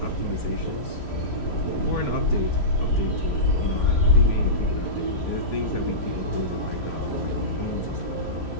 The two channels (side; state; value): right; late; 3.1 ms